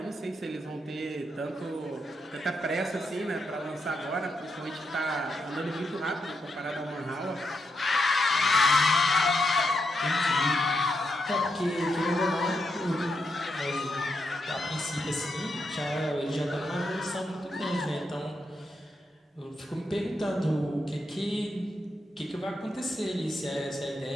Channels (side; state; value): both; normal; correlation 0.82